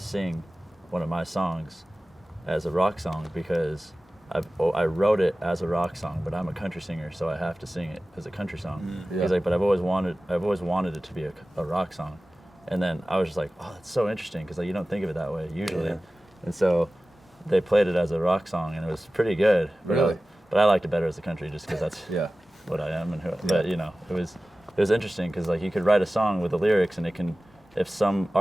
one of my songs as a rock song because I wrote it as a rock song, but I'm a country singer, so I have to sing it as a country song. Yeah. He's like, but I've always wanted it to be a rock song. And then I was just like, oh, that's so interesting because like you don't think of it that way usually. Yeah. And so they played it as a rock song, and it was pretty good. Really? But I liked it better as a country just because that's Yeah. what I am and who. But it was interesting because like you could write a song with the lyrics, and it can, if some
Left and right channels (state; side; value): normal; both; correlation 0.96